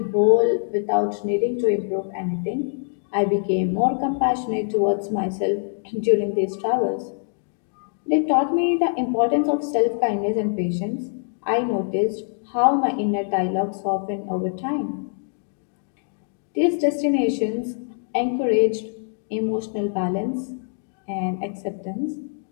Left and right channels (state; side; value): silent; right; 63 dB below the other